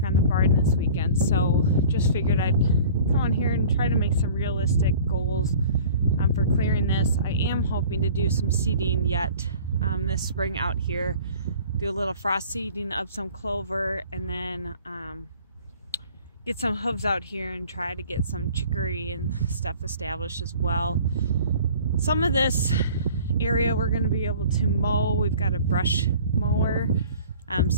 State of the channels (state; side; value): inverted; both; correlation -0.46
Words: on the barn this weekend, so just figured I'd come on here and try to make some realistic goals for clearing this. I am hoping to do some seeding yet this spring out here, do a little frost seeding of some clover, and then get some hooves out here and try to get some chicory and stuff established as well. Some of this area we're going to be able to mow. We've got a brush mower.